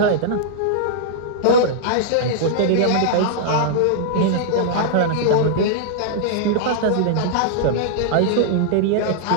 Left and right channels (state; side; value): different; both; correlation -0.01